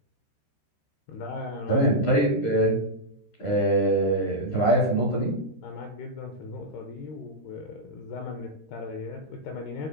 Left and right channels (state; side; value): late; right; 13 ms